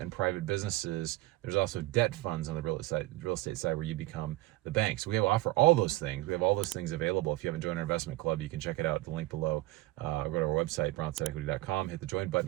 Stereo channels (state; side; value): quieter; left; 18.9 dB